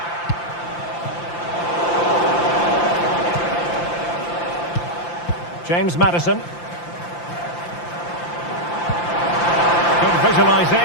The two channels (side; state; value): right; late; 5.8 ms